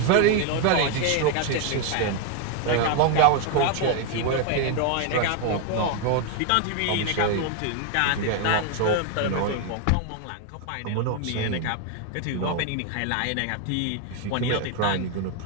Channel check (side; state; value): both; different; correlation 0.01